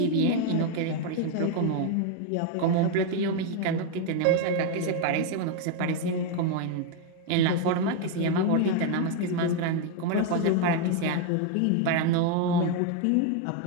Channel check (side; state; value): both; different; correlation 0.01